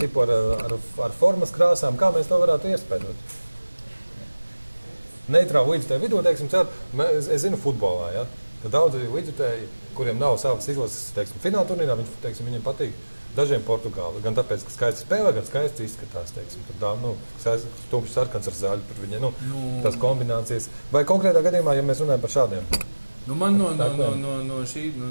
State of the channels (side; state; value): both; inverted; correlation -1.00